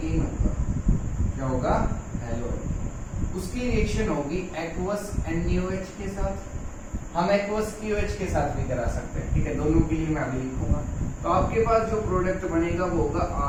होगा, क्या होगा? Halo alkene. उसकी रिएक्शन होगी एक्वस NaOH के साथ, हम एक्वस KOH के साथ भी करा सकते हैं। ठीक है, दोनों के लिए मैं अभी लिखूंगा। तो आपके पास जो प्रोडक्ट बनेगा वो होगा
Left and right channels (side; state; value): both; identical; correlation 1.00